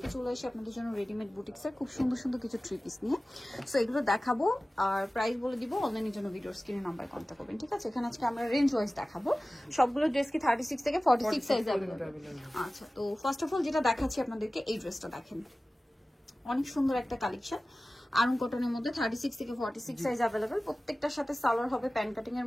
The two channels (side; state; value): both; normal; correlation 0.97